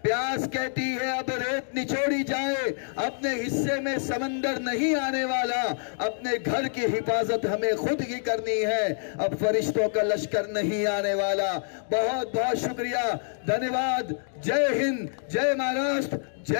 प्यास कहती है अब रेत निचोड़ी जाए, अपने हिस्से में समंदर नहीं आने वाला। अपने घर की हिफाजत हमें खुद ही करनी है, अब फरिश्तों का लश्कर नहीं आने वाला। बहुत बहुत शुक्रिया, धन्यवाद। जय हिंद, जय महाराष्ट्र,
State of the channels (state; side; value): silent; right; digital silence